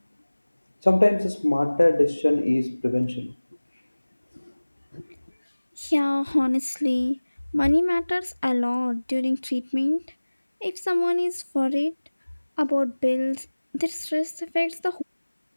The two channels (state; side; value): inverted; both; correlation -1.00